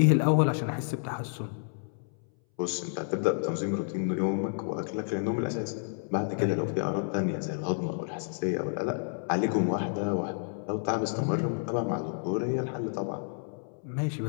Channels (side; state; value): right; silent; 58 dB below the other